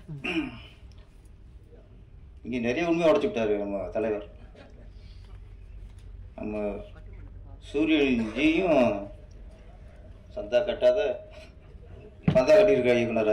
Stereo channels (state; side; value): identical; both; correlation 1.00